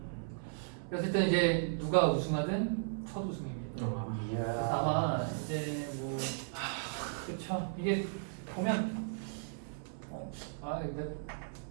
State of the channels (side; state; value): left; silent; 54 dB below the other